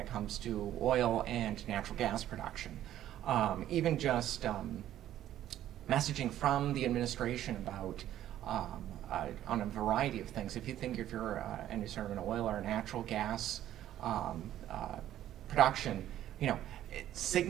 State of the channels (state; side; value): quieter; left; 12.3 dB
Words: comes to oil and natural gas production. Even just messaging from the administration about on a variety of things. If you're any sort of an oil or natural gas production,